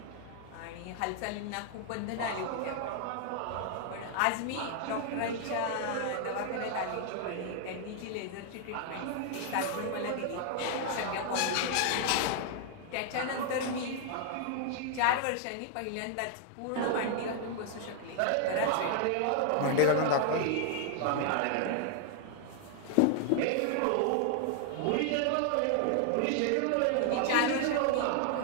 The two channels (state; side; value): different; both; correlation 0.00